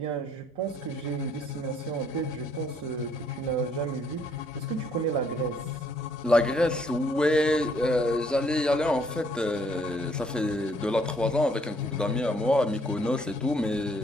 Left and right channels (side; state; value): both; normal; correlation 0.66